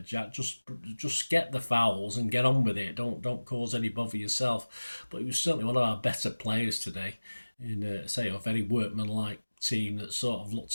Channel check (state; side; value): inverted; both; correlation -1.00